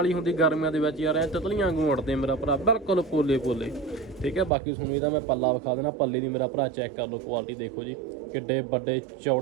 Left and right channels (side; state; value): left; drops out; at 4.5 s